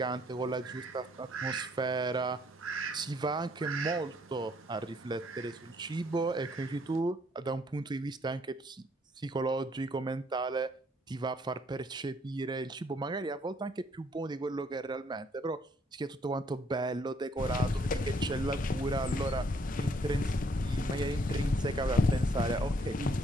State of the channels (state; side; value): normal; both; correlation 0.66